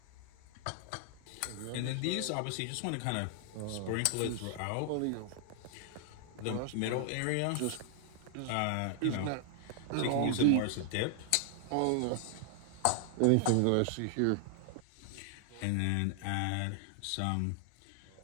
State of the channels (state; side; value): different; both; correlation 0.00